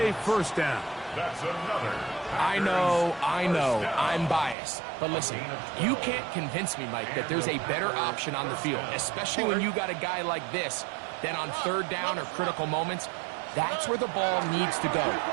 first down. That's another. I know, I'm biased. But listen, you can't convince me, Mike, that there's a better option on the field, especially when you got a guy like this, then on third down or critical moments. That's where the ball needs to go.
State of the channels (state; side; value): drops out; left; at 4.5 s